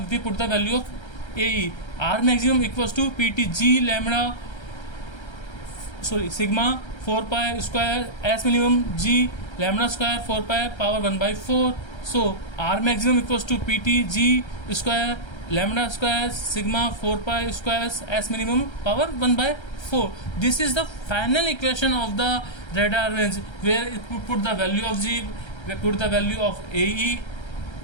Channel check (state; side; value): late; right; 1.3 ms